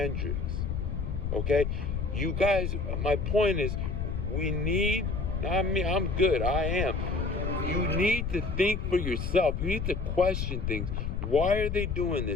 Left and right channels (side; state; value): left; noise; rumble, 2 dB below the sound